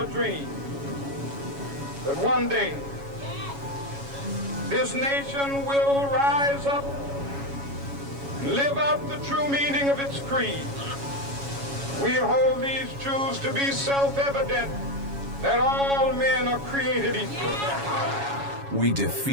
dream that one day this nation will rise up and live out the true meaning of its creed. We hold these truths to be self-evident, that all men are created equal. We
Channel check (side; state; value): left; late; 7.2 ms